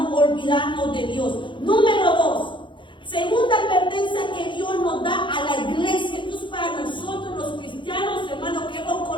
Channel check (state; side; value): late; right; 0.23 ms